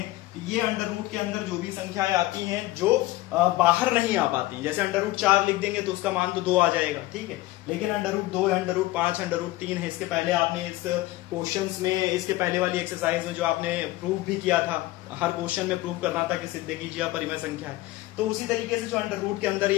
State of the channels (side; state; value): right; quieter; 18.0 dB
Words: तो ये अंडर रूट के अंदर जो भी संख्याएं आती हैं जो बाहर नहीं आ पाती, जैसे अंडर रूट 4 लिख देंगे तो उसका मान तो 2 आ जाएगा। ठीक है, लेकिन अंडर रूट 2 है, अंडर रूट 5, अंडर रूट 3 है, इसके पहले आपने इस क्वेश्चंस में, इसके पहले वाली एक्सरसाइज में जो आपने प्रूव भी किया था, हर क्वेश्चन में प्रूव करना था कि सिद्ध कीजिए अपरिमेय संख्या है, तो उसी तरीके से जो अंडर रूट के अंदर